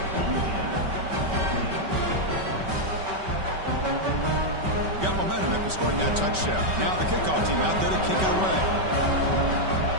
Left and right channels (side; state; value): left; late; 5.2 ms